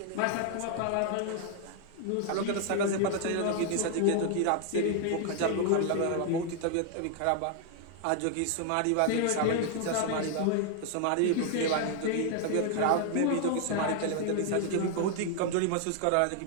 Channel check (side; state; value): both; different; correlation 0.00